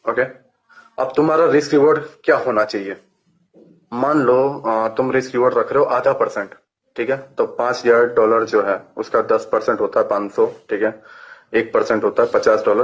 ओके। अब तुम्हारा रिस्क रिवॉर्ड क्या होना चाहिए? मान लो तुम रिस्क रिवॉर्ड रख रहे हो 0.5%, ठीक है। तो $5,000 जो है उसका 10% होता है 500, ठीक है। 1% होता है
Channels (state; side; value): identical; both; correlation 1.00